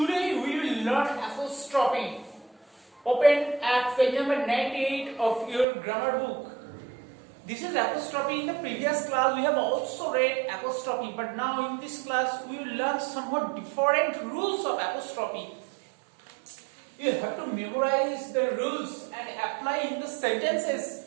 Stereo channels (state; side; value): drops out; left; at 5.7 s